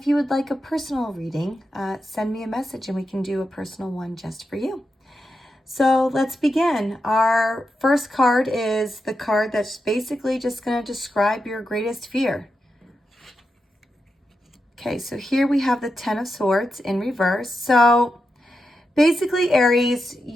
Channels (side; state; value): both; normal; correlation 0.87